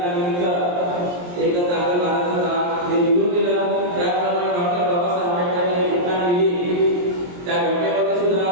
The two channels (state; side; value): late; left; 23 ms